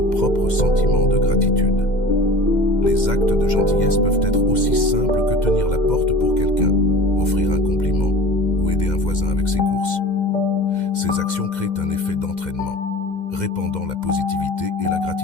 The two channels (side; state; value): right; late; 2.1 ms